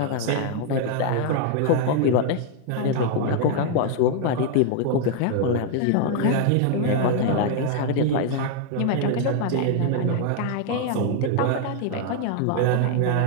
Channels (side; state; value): both; different; correlation 0.00